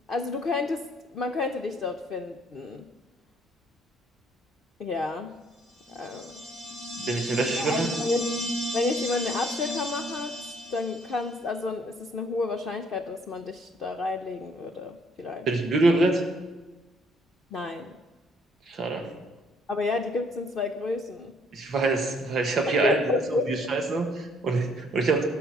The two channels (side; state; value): both; normal; correlation 0.64